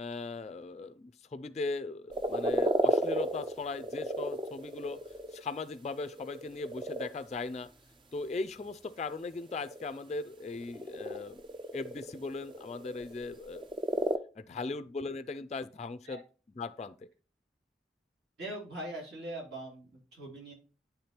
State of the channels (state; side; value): normal; both; correlation 0.54